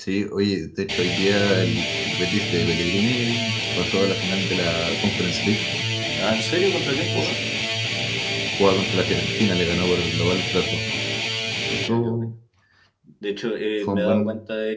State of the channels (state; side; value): identical; both; correlation 1.00